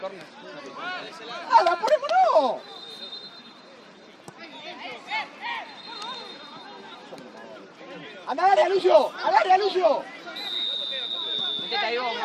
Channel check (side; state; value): both; identical; correlation 1.00